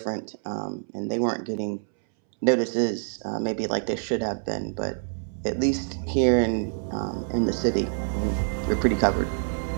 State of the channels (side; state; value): left; silent; 61 dB below the other